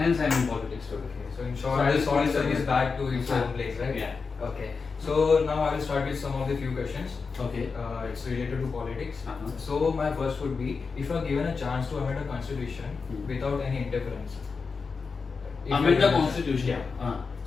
I am in politics today. So in short, this all is back to its own place, right? Yeah. Okay. So now I will start with some of the few questions. Okay. It's related to politics. Uh-huh. So my first would be, if you are given a chance to amend a constitution without any interference. Amend the constitution. Yeah.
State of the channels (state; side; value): quieter; right; 4.9 dB